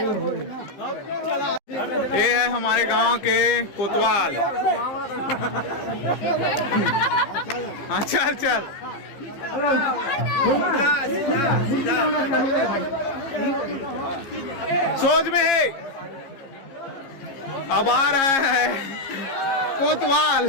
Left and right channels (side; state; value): right; late; 15 ms